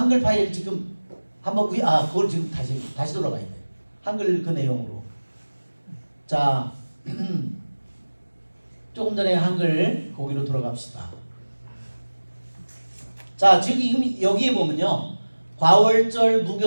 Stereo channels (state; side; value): inverted; both; correlation -1.00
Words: 파일 지금 한번 그걸 지금 다시 돌아가야 돼. 한글 그 내용으로. 자, 조금 전에 한글 거기로 돌아갑시다. 자, 지금 여기에 보면요, 과월절,